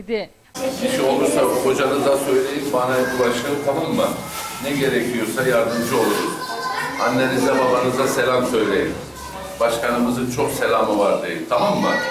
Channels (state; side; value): identical; both; correlation 1.00